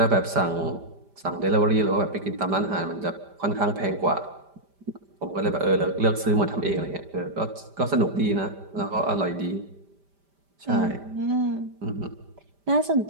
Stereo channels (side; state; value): left; late; 5.1 ms